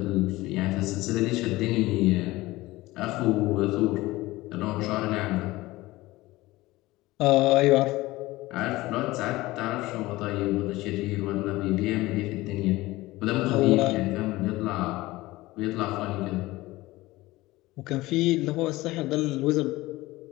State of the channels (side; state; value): right; quieter; 19.1 dB